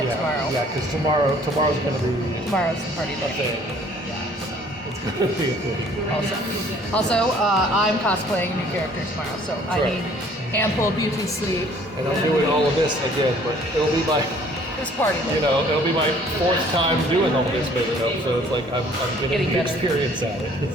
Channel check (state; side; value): normal; both; correlation 0.56